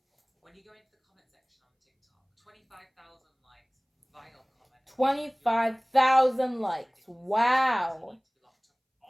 When you go into the comment section on TikTok, 25,000 likes, vile comment. 25,000 likes. Wow.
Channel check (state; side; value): identical; both; correlation 1.00